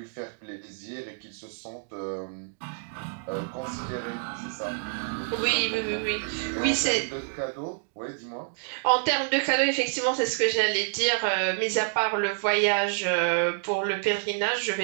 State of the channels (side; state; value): left; silent; digital silence